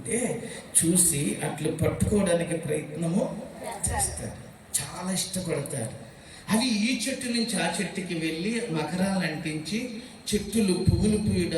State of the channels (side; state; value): both; identical; correlation 1.00